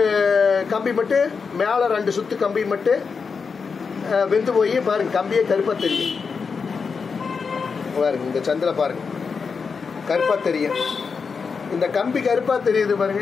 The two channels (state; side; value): quieter; right; 5.4 dB